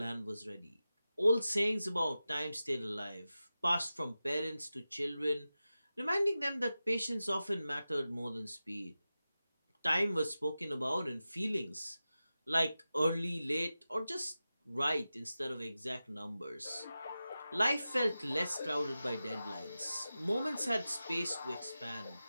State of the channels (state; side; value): inverted; both; correlation -0.94